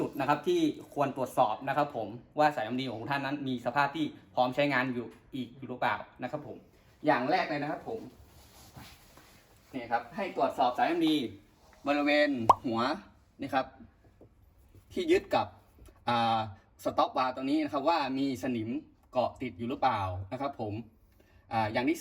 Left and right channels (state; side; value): identical; both; correlation 1.00